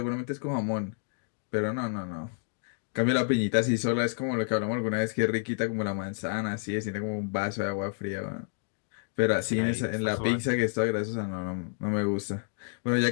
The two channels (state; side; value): silent; right; digital silence